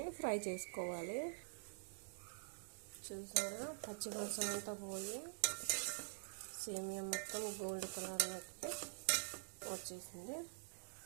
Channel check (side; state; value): left; silent; digital silence